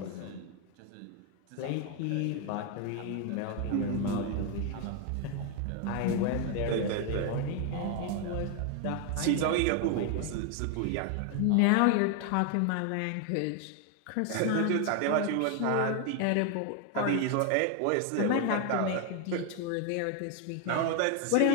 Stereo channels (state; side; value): different; both; correlation 0.01